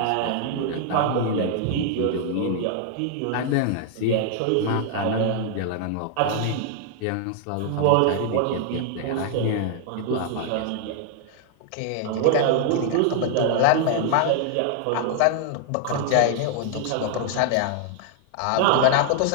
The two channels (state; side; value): different; both; correlation 0.00